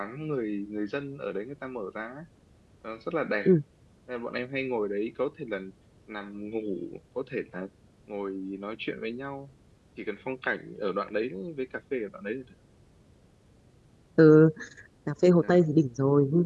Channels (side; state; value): both; identical; correlation 1.00